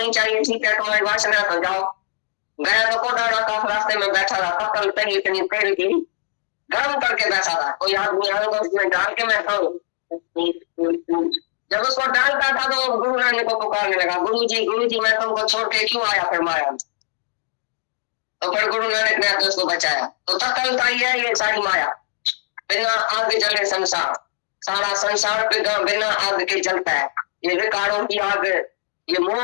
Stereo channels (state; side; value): silent; right; digital silence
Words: चाहिए, ठीक है तुम्हारी वासना, तो जाओ। गया तो कोडाड़ा आकाश रास्ते में बैठा था, पकड़ तरी इतनी पेड़ की गर्म करके बैठा था, कोई आदमी आया तो उसमें डाल के मैं खाऊं। जब उसको डालता था तो गुरु नानक को पुकारने लगा, गुरु जी मैं तुमको छोड़ के क्यों आया फिर माया। तो फिर गुरु नानक ने आकर उसको बचाया। तो तकल का ये सारी माया, बिना आग जले संसार, सारा संसार बिना आग के जलता है। ये विकारों की आग, ये